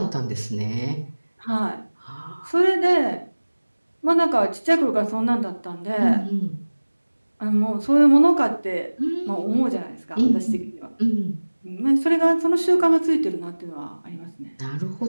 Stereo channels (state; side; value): inverted; both; correlation -1.00